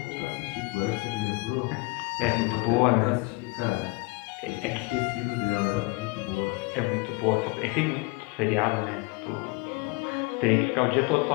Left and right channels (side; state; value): right; quieter; 25.8 dB